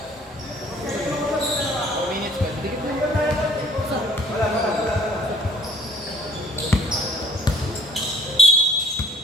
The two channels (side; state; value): both; normal; correlation 0.58